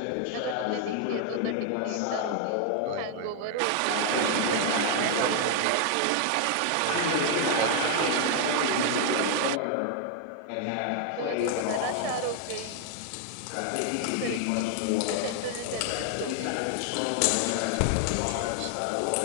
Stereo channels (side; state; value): both; different; correlation 0.00